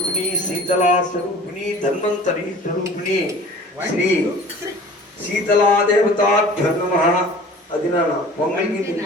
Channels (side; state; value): both; normal; correlation 0.45